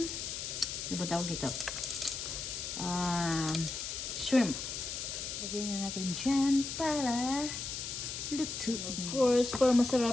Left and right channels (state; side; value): noise; left; hiss, 5 dB below the sound